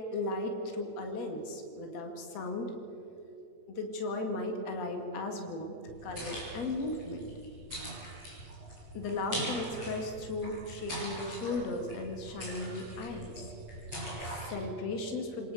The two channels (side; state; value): left; late; 8.2 ms